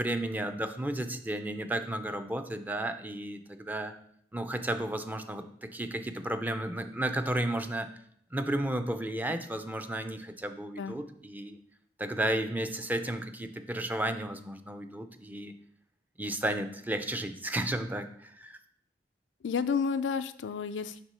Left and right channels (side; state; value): both; normal; correlation 0.64